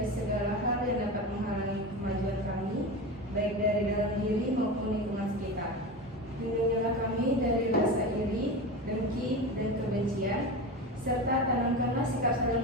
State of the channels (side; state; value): both; normal; correlation 0.25